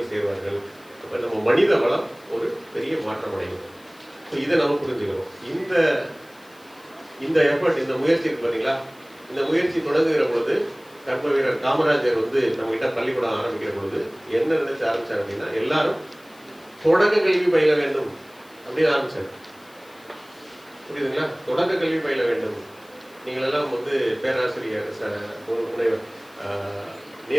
சேருவார்கள். அப்போ நம்ம மனித வளம் ஒரு பெரிய மாற்றம் அடையும். ஸோ இதை நம்ம புரிஞ்சுக்கணும். இந்த எஃபர்ட், இந்த முயற்சி இருக்கு பார்த்தீங்களா, இந்த முயற்சி தொடங்குகிற பொழுது கர்ம வீரர் காமராஜர் வந்து நம்ம கிட்ட பள்ளிக்கூடம் ஆரம்பிக்கிற பொழுது என்ன நினைச்சு ஆரம்பிச்சார் அப்படின்னா, எல்லாரும் தொடக்க கல்வி பயில வேண்டும் அப்படின்னு ஆரம்பிச்சார். புரியுதுங்களா? தொடக்க கல்வி பயில வேண்டும். நீங்கள் எல்லாம் வந்து பேராசிரியர் முனைவர்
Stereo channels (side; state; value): left; noise; hiss, 27 dB below the sound